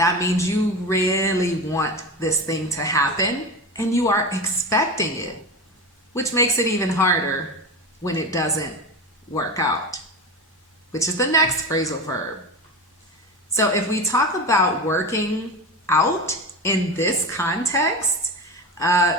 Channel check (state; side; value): normal; both; correlation 0.24